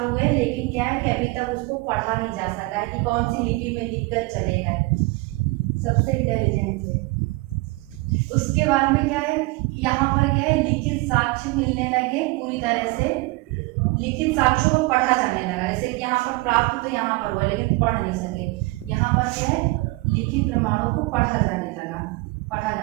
हुए, लेकिन क्या है कि अभी तक उसको पढ़ा नहीं जा सका है कि कौन सी लिपि में लिख कर चलेगा। सबसे इंटेलिजेंट है उसके बाद में क्या है, यहाँ पर क्या है, लिखित साक्ष्य मिलने लगे, पूरी तरह से लिखित साक्ष्यों को पढ़ा जाने लगा। जैसे कि यहाँ पर प्राप्त तो यहाँ पर हुआ लेकिन पढ़ नहीं सके, यहाँ पर क्या है, लिखित प्रमाणों को पढ़ा जाने लगा, पढ़ा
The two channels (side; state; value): left; quieter; 23.5 dB